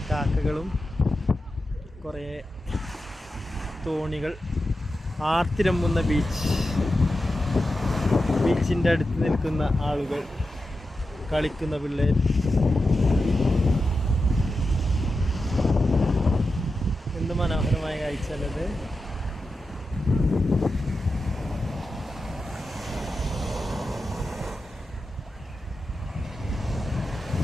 കാക്കകളും കുറേ തോണികൾ, ആർത്തിരമ്പുന്ന ബീച്ചിൻ്റെ അടുത്ത് നിൽക്കുന്ന ആളുകൾ, കളിക്കുന്ന പിള്ളേർ. എന്ത് മനോഹരമായ കാഴ്ചയല്ലത്.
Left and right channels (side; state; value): both; normal; correlation 0.91